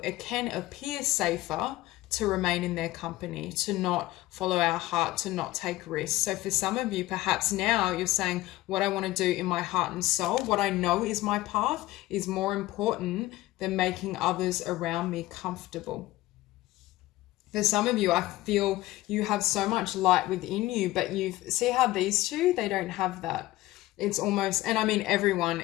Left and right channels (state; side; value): quieter; right; 17.4 dB